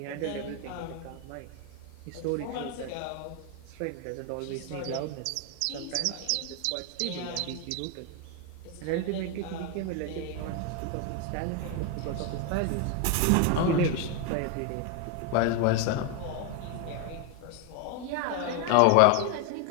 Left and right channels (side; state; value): both; different; correlation 0.01